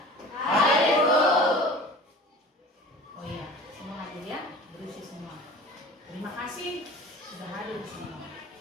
Hadir, Bu. Oh iya, semua hadir ya, berisi semua. Terima kasih sudah hadir semua.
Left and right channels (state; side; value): normal; both; correlation 0.40